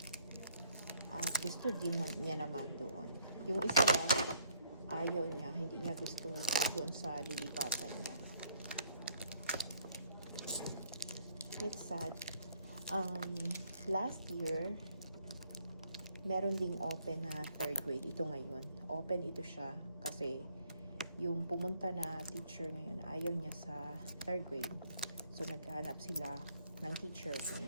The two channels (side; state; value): both; inverted; correlation -0.67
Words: At gusto din niya naman doon. Yung isa lang, ayaw niya, hindi niya gusto doon sa lilipatan niya. It's sad. Last year, meron ding open na 3rd grade. Ito ngayon. Open ito siya kasi yung pumunta na teacher ngayon, ayaw niya sa 3rd grade. So, naghahanap sila ng teacher kung